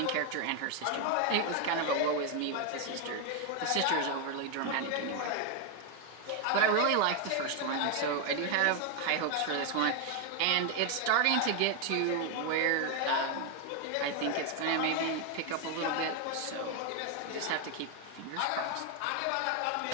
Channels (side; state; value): both; different; correlation 0.01